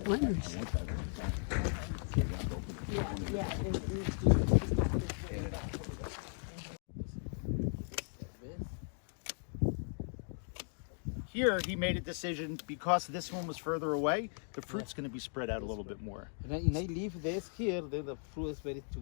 wineries. Here, he made a decision because this one was further away, the fruit's going to be spread out a little bit more. And I leave this here, then the fruit is very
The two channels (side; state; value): right; silent; 53 dB below the other